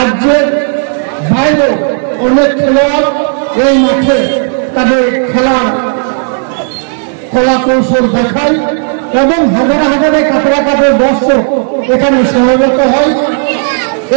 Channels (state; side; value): silent; left; digital silence